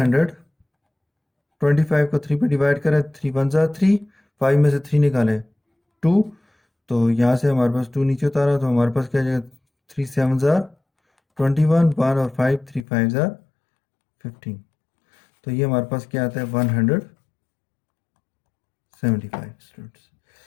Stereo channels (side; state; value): right; drops out; at 12.9 s